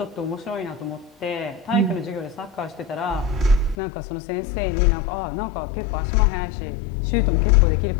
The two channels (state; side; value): drops out; right; at 3.8 s